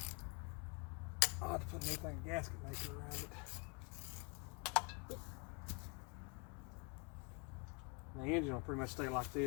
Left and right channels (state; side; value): quieter; right; 31.9 dB